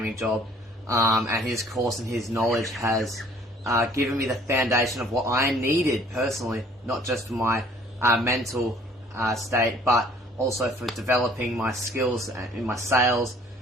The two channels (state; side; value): normal; both; correlation 0.56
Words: job, and his course and his knowledge has given me the foundation of what I needed personally, not just for my mental state, but also for developing my skills in my sales,